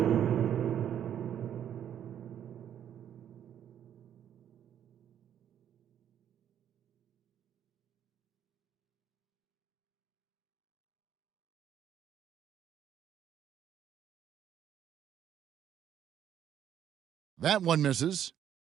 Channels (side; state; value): left; quieter; 9.9 dB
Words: That one misses.